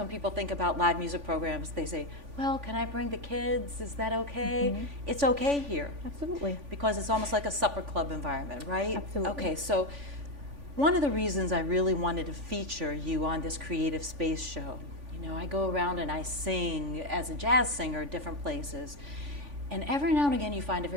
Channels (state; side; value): late; left; 3.5 ms